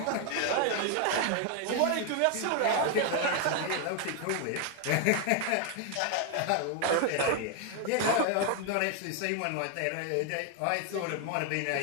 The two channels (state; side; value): different; both; correlation 0.00